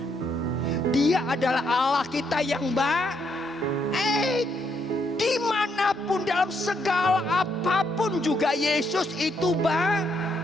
Dia adalah Allah kita yang baik. Dimanapun dalam segala apapun juga Yesus itu baik.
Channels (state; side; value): normal; both; correlation 0.75